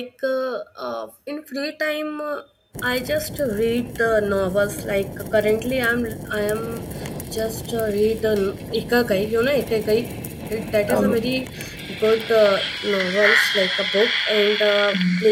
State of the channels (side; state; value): both; identical; correlation 1.00